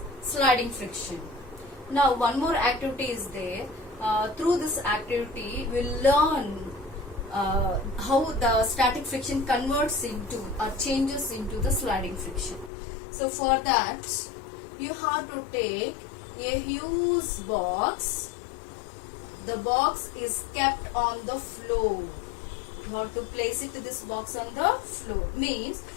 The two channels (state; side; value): drops out; right; at 12.7 s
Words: sliding friction. Now one more activity is there. Through this activity we'll learn how the static friction converts into or changes into the sliding friction. So for that you have to take a huge box. The box is kept on the floor. You have to place it this box on the floor. Means